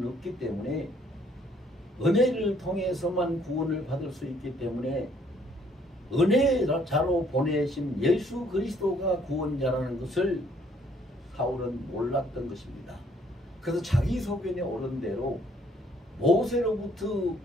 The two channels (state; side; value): normal; both; correlation 0.64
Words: 없기 때문에 은혜를 통해서만 구원을 받을 수 있기 때문에 은혜자로 보내신 예수 그리스도가 구원자라는 것을 사울은 몰랐던 것입니다. 그래서 자기 소견에 옳은 대로 모세로부터